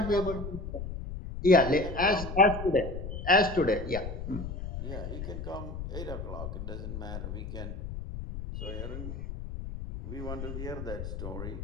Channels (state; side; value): noise; left; rumble, 7 dB below the sound